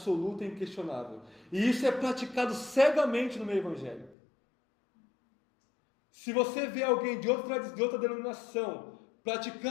e inquestionável. E isso é praticado cegamente no meio evangélico. Se você vê alguém de outra denominação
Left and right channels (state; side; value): drops out; right; at 4.2 s